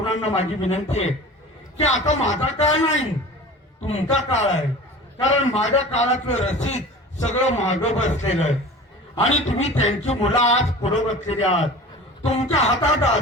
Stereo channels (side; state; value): both; normal; correlation 0.38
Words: माझी विनंती आहे की आता माझा काळ नाही, तुमचा काळ आहे. कारण माझ्या काळातलं रसीद सगळं मागं बसलेलं आहे आणि तुम्ही त्यांची मुलं आज पुढे बसलेली आहात. तुमच्या हातात